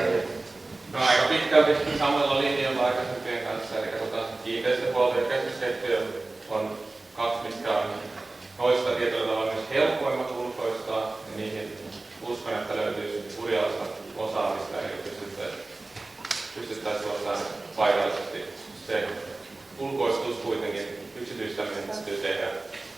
No aika pitkälti samalla linjalla aikaisempien kanssa, eli kiinteistöhuolto ja keskuskeittiö on kaksi, mitkä on noista tietyllä tavalla myös helppoimmat ulkoistaa, ja niihin uskon, että löytyisi Urjalasta osaamista, eli pystyttäisiin ottamaan paikallisesti. Se ulkoistus kuitenkin, yksityistäminen täytyy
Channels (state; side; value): quieter; left; 3.2 dB